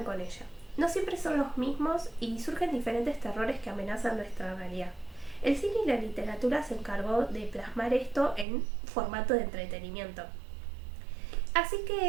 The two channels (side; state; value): left; drops out; at 8.5 s